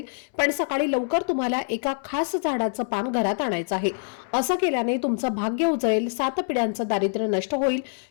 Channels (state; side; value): silent; right; 62 dB below the other